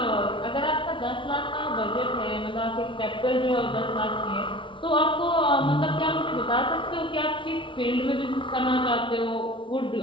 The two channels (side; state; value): right; late; 0.25 ms